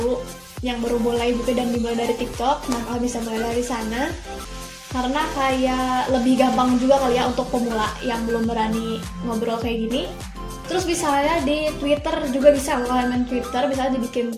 yang baru mulai gitu dan dimulai dari TikTok. Nah, kalian bisa mulai dari sana karena kayak lebih gampang juga kali ya untuk pemula yang belum berani ngobrol kayak gini. Terus misalnya di Twitter juga bisa, kalau kalian main Twitter bisa dibikin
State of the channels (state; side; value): identical; both; correlation 1.00